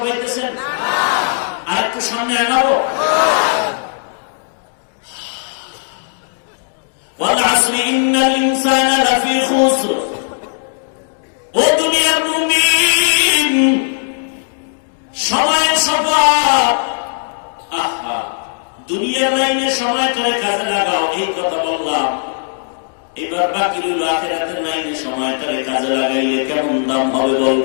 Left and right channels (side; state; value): right; silent; digital silence